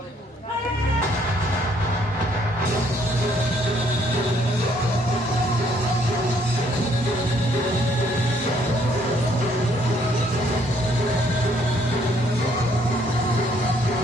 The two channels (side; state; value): both; normal; correlation 0.66